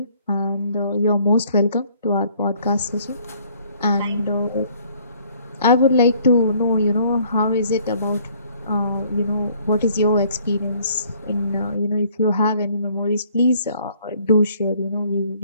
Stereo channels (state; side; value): inverted; both; correlation -0.61